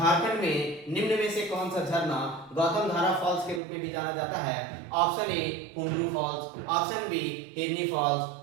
में निम्न में से कौन सा झरना गौतम धारा फॉल्स के रूप में भी जाना जाता है? Option A Hundru falls, option B Hirni falls,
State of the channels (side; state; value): left; drops out; at 3.6 s